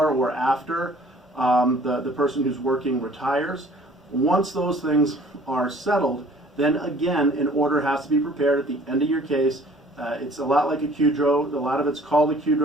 or after the person who's working retires. Once those things are settled, then again an order has to be prepared at the end of your case. It's a lot like a QDRO. A lot of it's called a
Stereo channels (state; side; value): normal; both; correlation 0.53